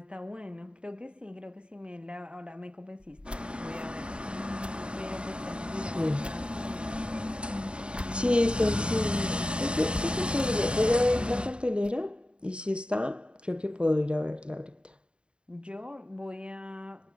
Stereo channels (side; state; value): left; late; 0.053 ms